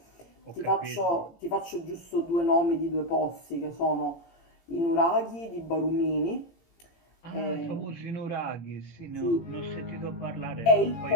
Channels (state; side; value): late; right; 18 ms